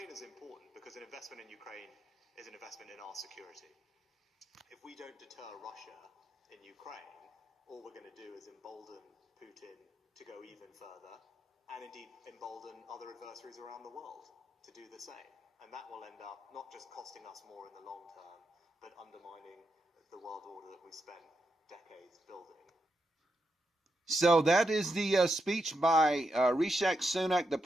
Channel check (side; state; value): both; normal; correlation 0.84